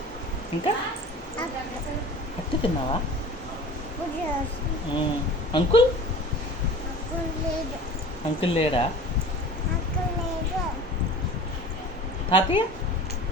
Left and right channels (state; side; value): normal; both; correlation 0.40